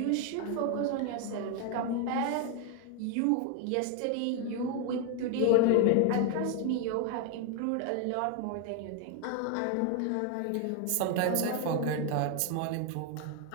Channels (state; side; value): different; both; correlation 0.01